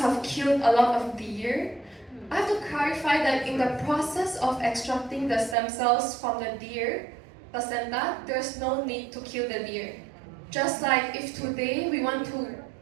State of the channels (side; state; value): left; drops out; at 5.6 s